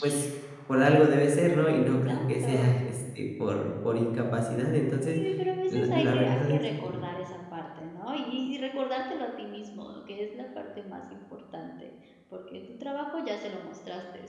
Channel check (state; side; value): identical; both; correlation 1.00